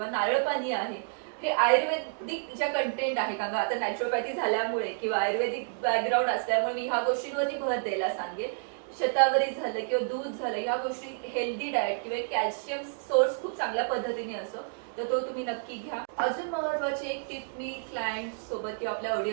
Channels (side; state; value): left; silent; digital silence